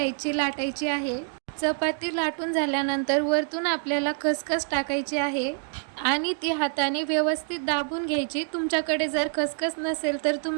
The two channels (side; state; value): left; silent; 61 dB below the other